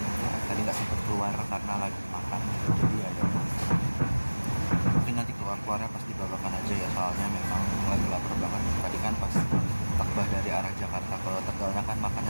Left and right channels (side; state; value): both; inverted; correlation -1.00